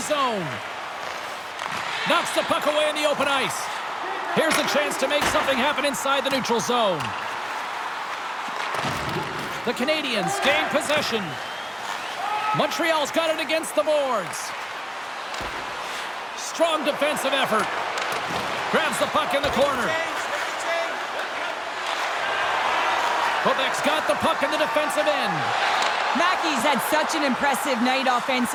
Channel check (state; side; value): identical; both; correlation 1.00